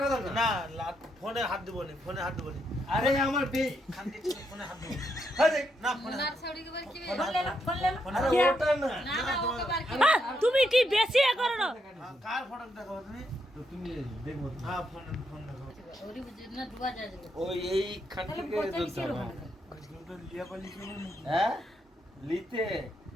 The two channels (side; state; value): both; normal; correlation 0.79